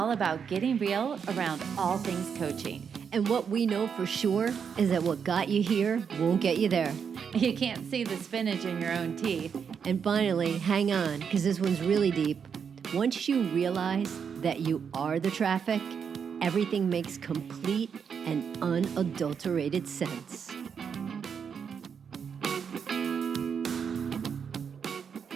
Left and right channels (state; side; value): quieter; left; 6.9 dB